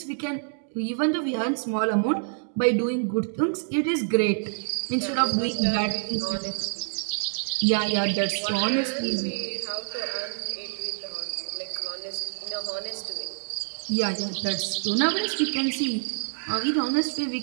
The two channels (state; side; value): silent; left; 60 dB below the other